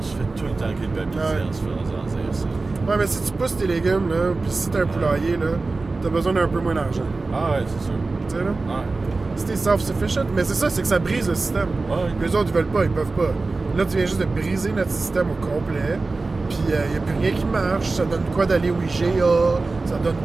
se fait tout le temps culpabiliser en se faisant dire ça. Ouais, mais si tu pousses tes légumes, là, puis si t'as un poulailler, là, t'as besoin d'un peu moins d'argent. Ah ouais, c'est sûr. Tu sais, là? Ouais. Si t'es self-sufficient, mais c'est ça, c'est que ça brise le système. Les autres, ils veulent pas, ils peuvent pas. Là, tu viens juste de briser notre système au complet, puis il n'y a plus rien qui marche. Ça donne quoi d'aller au IGA? Ça donne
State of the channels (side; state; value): left; quieter; 3.6 dB